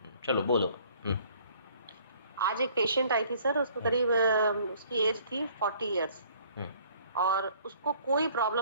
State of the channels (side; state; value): both; inverted; correlation -0.57